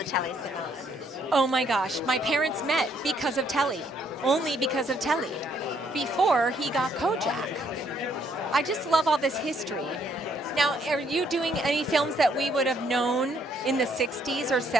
Telly Savalas. Oh my gosh, my parents met because of Telly, only because of Telly, before he got Kojak. I just love all this history. Now, are you doing any films that we would have known in the 60s or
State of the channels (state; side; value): normal; both; correlation 0.69